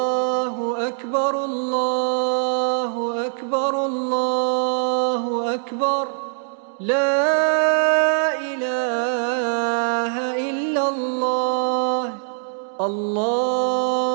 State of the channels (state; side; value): silent; left; digital silence